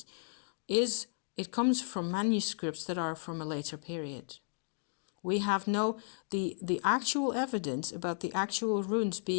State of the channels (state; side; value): silent; right; digital silence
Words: it comes from manuscripts that are from a later period. We have the actual evidence about the actual runes